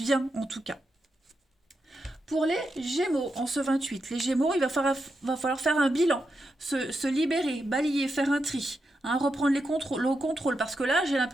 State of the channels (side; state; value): both; normal; correlation 0.86